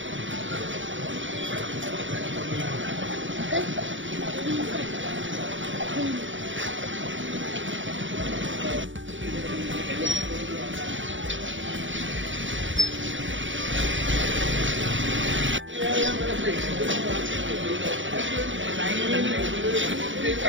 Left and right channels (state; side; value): late; left; 0.56 ms